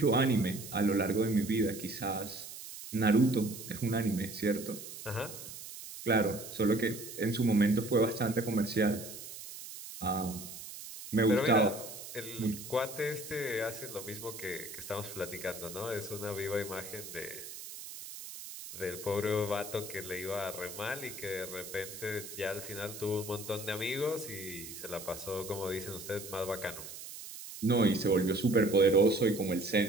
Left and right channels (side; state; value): right; noise; hiss, 12 dB below the sound